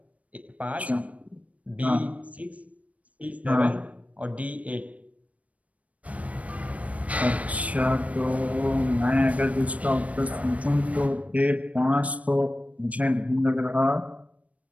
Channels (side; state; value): left; late; 0.067 ms